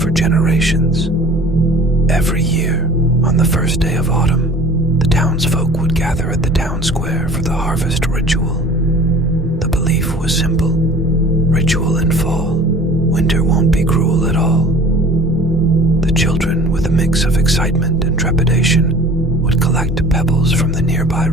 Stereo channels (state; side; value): normal; both; correlation 0.45